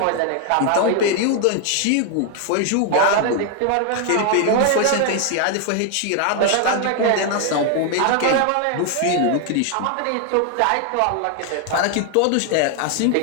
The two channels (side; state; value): both; different; correlation 0.00